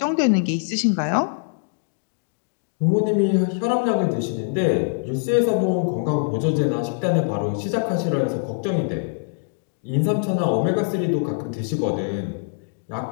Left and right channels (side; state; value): right; silent; digital silence